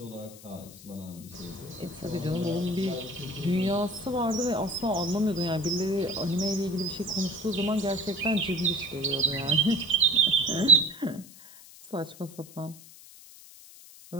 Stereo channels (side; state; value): left; noise; hiss, 19 dB below the sound